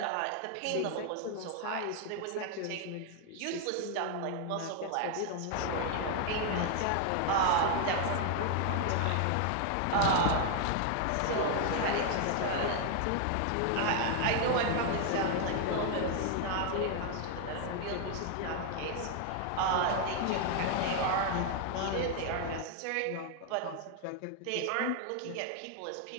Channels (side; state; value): both; different; correlation 0.00